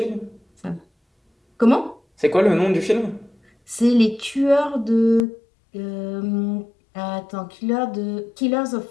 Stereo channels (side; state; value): right; drops out; at 5.2 s